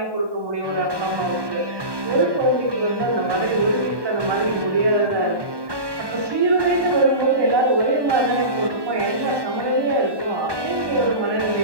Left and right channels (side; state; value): left; late; 1.2 ms